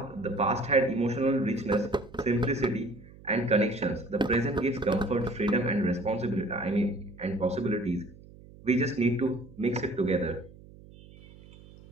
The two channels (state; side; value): noise; right; hum, 21 dB below the sound